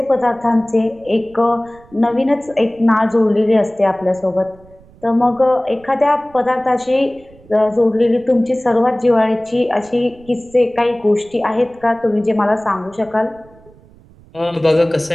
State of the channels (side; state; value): right; noise; rumble, 26 dB below the sound